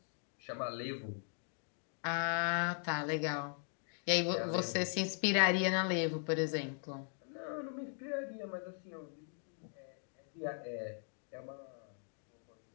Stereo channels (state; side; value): silent; right; 52 dB below the other